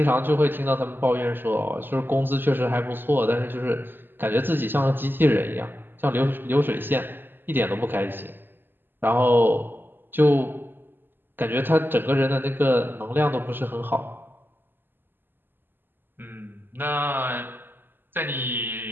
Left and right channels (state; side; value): late; left; 0.096 ms